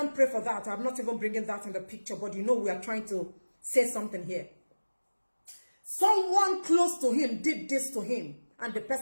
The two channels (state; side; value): inverted; both; correlation -1.00